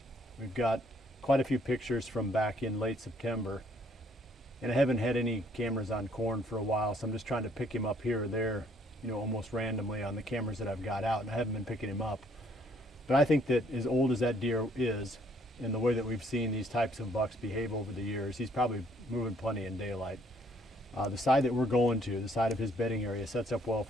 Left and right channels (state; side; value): normal; both; correlation 0.65